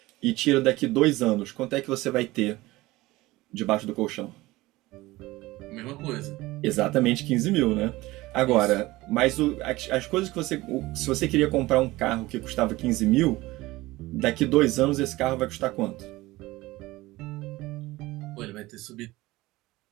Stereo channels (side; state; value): left; quieter; 19.3 dB